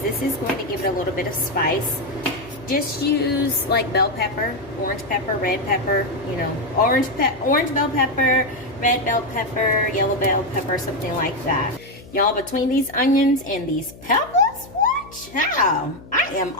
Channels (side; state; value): left; noise; hum, 19 dB below the sound